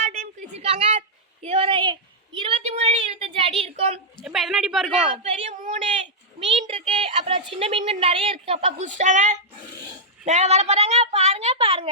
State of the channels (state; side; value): normal; both; correlation -0.09